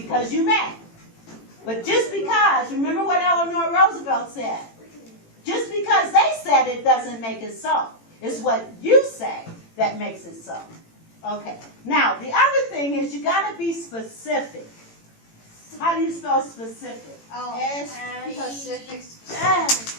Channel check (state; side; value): late; right; 18 ms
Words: you may. But just because, remember what Eleanor Roosevelt said, just because they said it doesn't make it so. It's what you say that makes it so. Okay. Now, the other thing is you got to be specific. How do you spell specific? Oh, Specific.